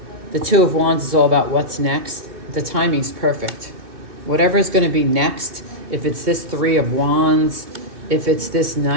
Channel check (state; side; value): late; left; 2.6 ms